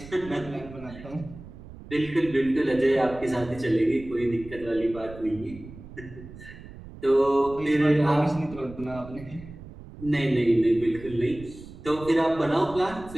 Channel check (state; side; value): noise; right; rumble, 16 dB below the sound